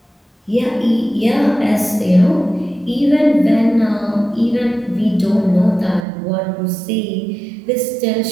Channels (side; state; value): left; drops out; at 6.1 s